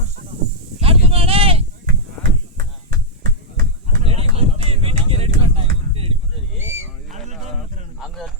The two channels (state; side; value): normal; both; correlation -0.04